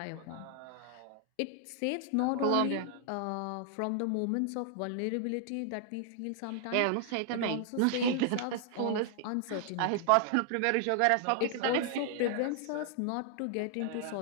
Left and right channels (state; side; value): different; both; correlation 0.00